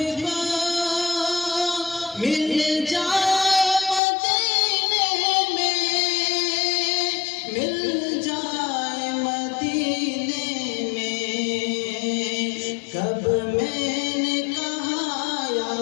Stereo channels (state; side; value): drops out; right; at 4.0 s